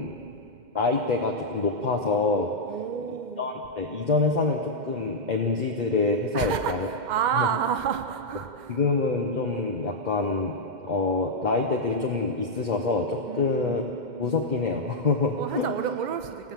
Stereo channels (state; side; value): late; left; 2.1 ms